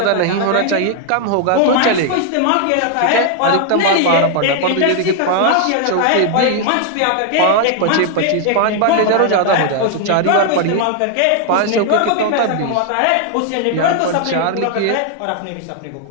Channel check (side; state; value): both; different; correlation 0.00